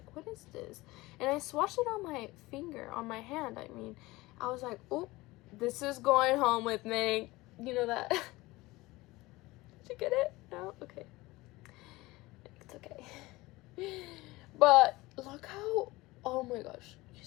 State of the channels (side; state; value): right; quieter; 20.4 dB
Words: what is this? And I swatched it on my finger, on my hand. I mean, I was like, oh, this is going home with me. You know that? Did you get it? No? Okay. It's okay. But look how, oh my gosh, you